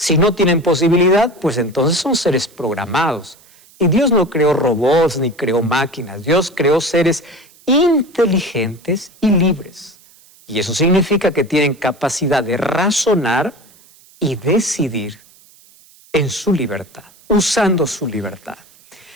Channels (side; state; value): right; noise; hiss, 27 dB below the sound